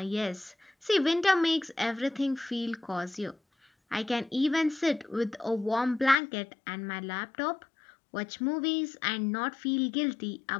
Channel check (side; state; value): right; drops out; at 6.2 s